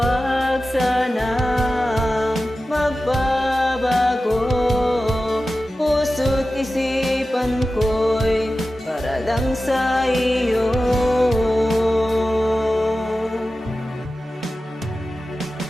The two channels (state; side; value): normal; both; correlation 0.94